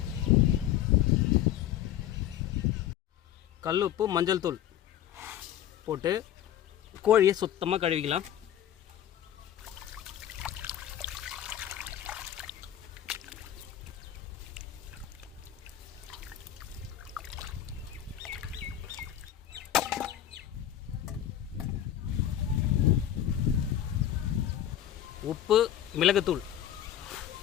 கல்லுப்பு மஞ்சள் தூள் போட்டு கோழியை சுத்தமாக கழுவிக்கலாம். உப்பு, மிளகுத்தூள்,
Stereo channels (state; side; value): quieter; right; 11.1 dB